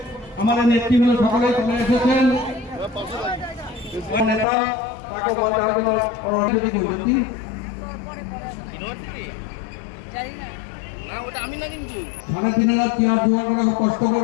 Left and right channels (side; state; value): right; drops out; at 4.5 s